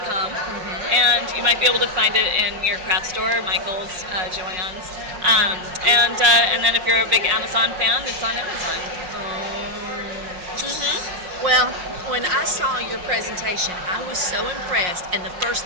and you might be able to find it in your craft store, Michael's, Joann's, and then if you're a big Amazon fan, it's on Amazon. Well, when I saw your presentation, I was so impressed, and the first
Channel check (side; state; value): left; late; 5.5 ms